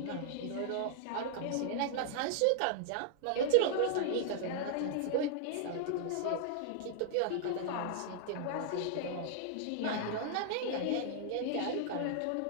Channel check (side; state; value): both; different; correlation -0.01